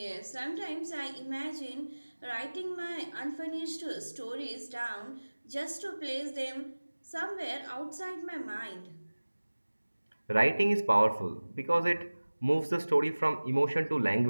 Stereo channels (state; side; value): inverted; both; correlation -1.00